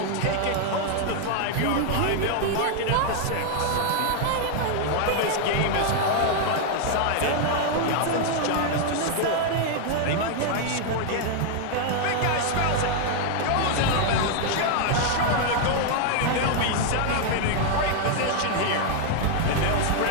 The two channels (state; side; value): different; both; correlation 0.00